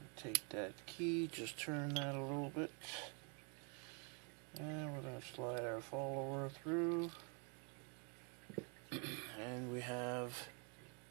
Take that key, just turn that a little bit. And we're going to slide our follower through. And we have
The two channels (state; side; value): quieter; left; 35.8 dB